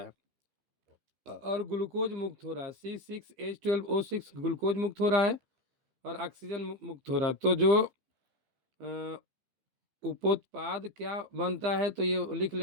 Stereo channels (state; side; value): late; left; 15 ms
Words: और ग्लूकोज मुक्त हो रहा है। C6H12O6 ग्लूकोज मुक्त हो रहा है और ऑक्सीजन मुक्त हो रहा है। तो जो उपोत्पाद क्या बनता है, तो ये लिख